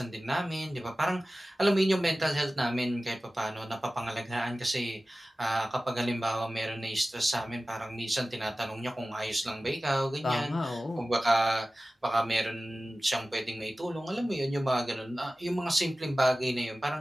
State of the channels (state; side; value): normal; both; correlation 0.96